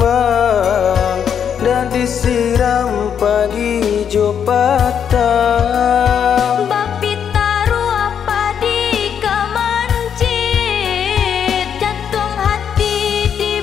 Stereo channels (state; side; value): quieter; right; 8.1 dB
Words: dan disiram pagi jo patang. Bapi taruh apa di kemancit, jantung hati